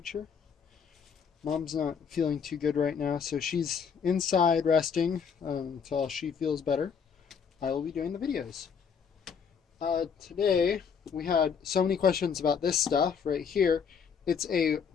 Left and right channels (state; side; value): quieter; right; 6.6 dB